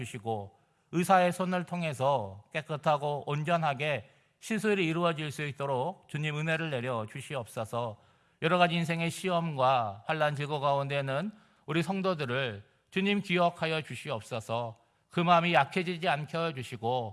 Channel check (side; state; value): both; identical; correlation 1.00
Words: 의사의 손을 통해서 깨끗하고 온전하게 시술이 이루어질 수 있도록 주님 은혜를 내려 주시옵소서. 여러 가지 인생의 시험과 환난 질고 가운데는 우리 성도들을 주님 기억하여 주시옵소서. 그 마음이 약해지지 않게